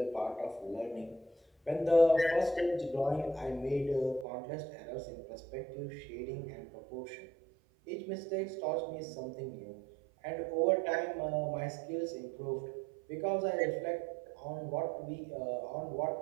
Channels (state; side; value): drops out; left; at 4.2 s